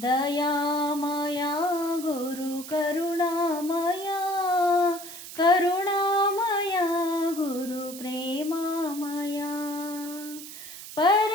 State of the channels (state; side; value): noise; right; hiss, 12 dB below the sound